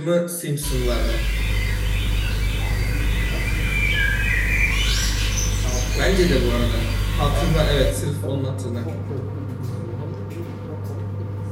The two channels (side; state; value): both; identical; correlation 1.00